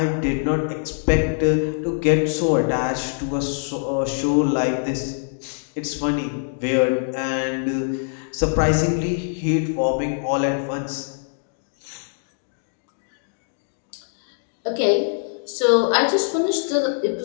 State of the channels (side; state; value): right; silent; digital silence